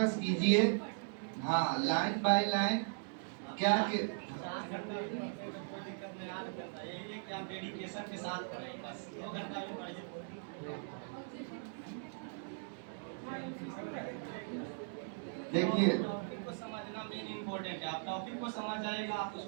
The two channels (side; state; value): left; silent; digital silence